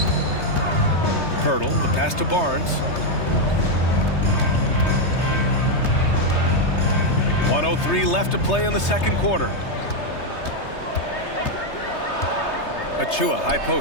Hurdle, the pass to Barnes. 1:03 left to play in the second quarter. Achua, high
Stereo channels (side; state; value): right; late; 3.3 ms